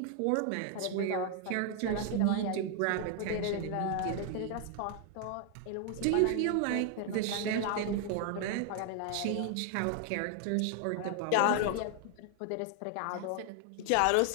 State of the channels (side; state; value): both; different; correlation 0.00